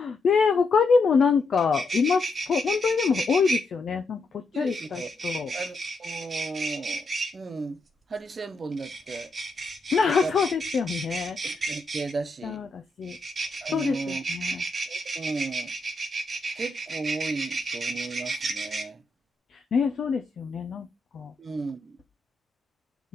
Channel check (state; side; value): quieter; right; 3.1 dB